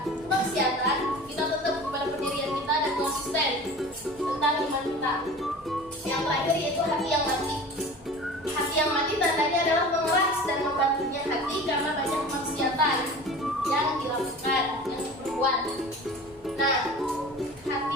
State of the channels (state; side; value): normal; both; correlation 0.38